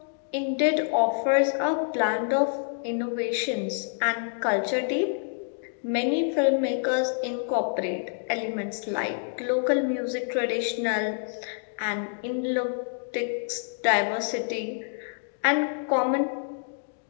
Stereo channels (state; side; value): silent; right; digital silence